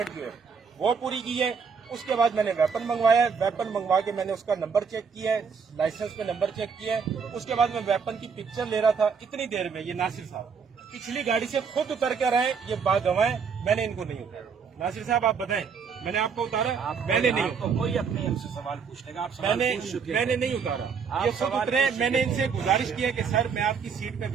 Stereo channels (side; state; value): left; quieter; 6.0 dB